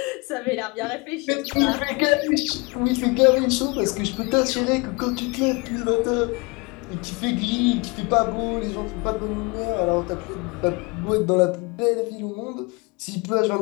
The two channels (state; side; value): quieter; right; 28.0 dB